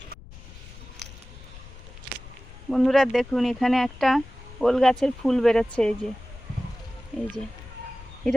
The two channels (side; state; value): left; noise; rumble, 17 dB below the sound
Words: বন্ধুরা দেখুন, এখানে একটা ওল গাছের ফুল বেরোচ্ছে। এই যে